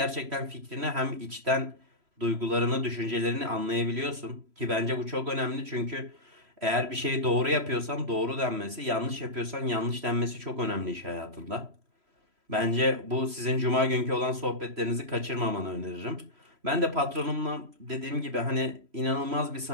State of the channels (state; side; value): late; left; 3.0 ms